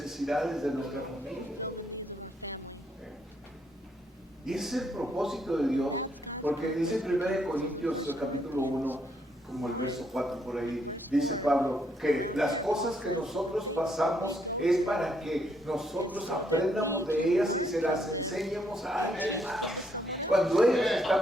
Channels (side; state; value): both; normal; correlation 0.73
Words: de nuestra familia. Y ese es el propósito de Dios, porque dice en 1 Corintios capítulo 1, como el verso 4 por ahí, dice Pablo, que las cosas que nosotros pasamos es para que nosotros aprendamos de ellas y se las enseñemos a alguien más. Cuando ellos